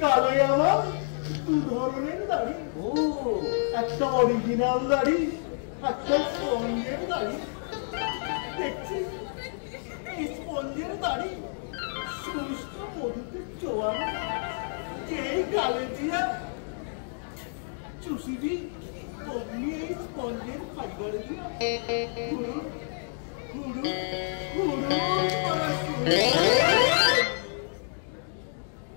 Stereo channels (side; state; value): right; silent; digital silence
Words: কালে আমার দু ধরনের দাড়ি। ও একটা অরিজিনাল দাড়ি, একটা স্পঞ্জের দাড়ি। দেখছিস এই স্পঞ্জের দাড়ি শুষ্ক মধুতে চোয়ানো, যেই গালে দিয়া চুষিবি অমনি এই স্পঞ্জের ফাইবার দিয়া হুড়ু হুড়ু হুড়ু করা শুরু।